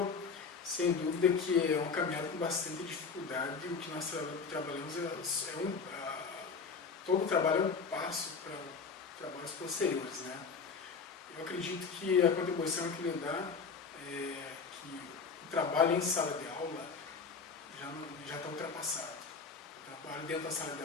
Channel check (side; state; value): right; quieter; 5.2 dB